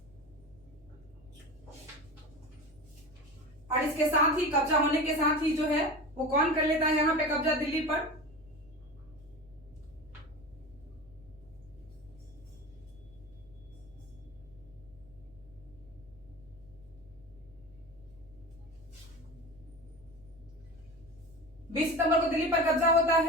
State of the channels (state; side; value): noise; right; hum, 26 dB below the sound